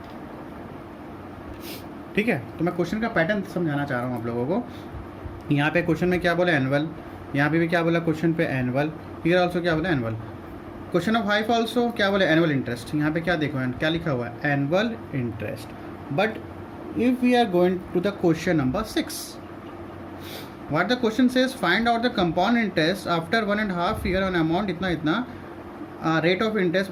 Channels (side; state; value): both; identical; correlation 1.00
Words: ठीक है, तो मैं क्वेश्चन का पैटर्न समझाना चाह रहा हूँ आप लोगों को. यहाँ पे क्वेश्चन में क्या बोला एनुअल, यहाँ पे भी क्या बोला क्वेश्चन पे एनुअल, हियर ऑल्सो क्या बोला एनुअल. क्वेश्चन ऑफ हाइफ ऑल्सो क्या बोले एनुअल इंटरेस्ट. यहाँ पे क्या देखो क्या लिखा हुआ है annual interest. But if we are going to the question number 6, what the question says, find out the compound interest after 1.5 year on amount इतना इतना rate of